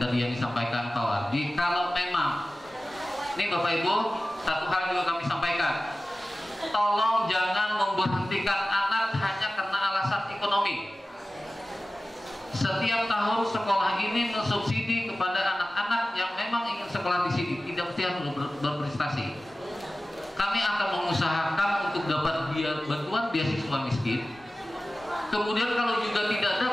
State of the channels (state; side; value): normal; both; correlation 0.96